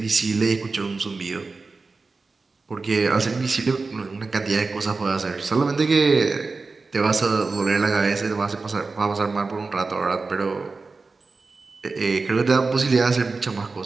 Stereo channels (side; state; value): left; quieter; 4.0 dB